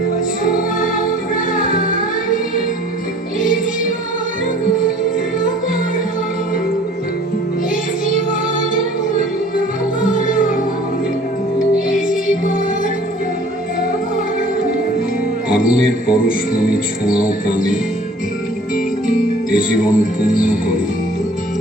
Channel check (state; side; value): normal; both; correlation 0.50